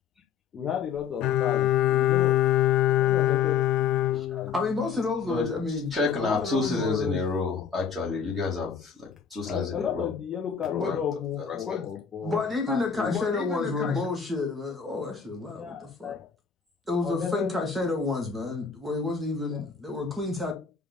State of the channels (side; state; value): right; quieter; 6.6 dB